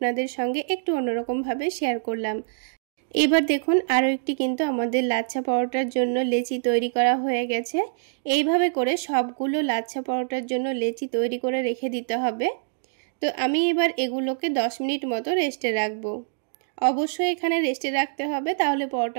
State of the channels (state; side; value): silent; left; digital silence